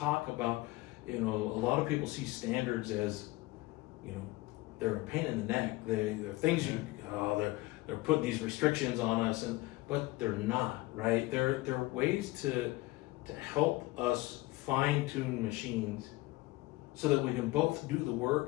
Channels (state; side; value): quieter; right; 20.2 dB